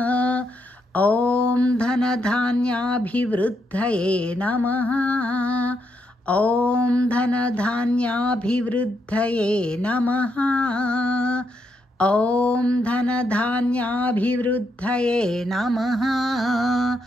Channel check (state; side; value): normal; both; correlation 0.79